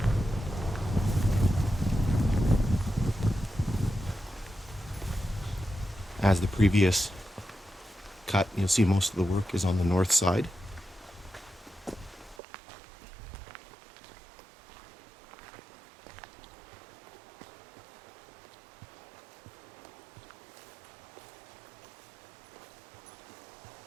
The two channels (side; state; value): left; drops out; at 12.4 s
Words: As the previous cut, you'll see most of the work is on the north side.